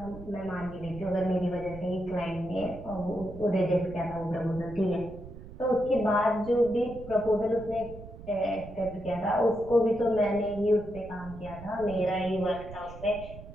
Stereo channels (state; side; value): noise; right; rumble, 14 dB below the sound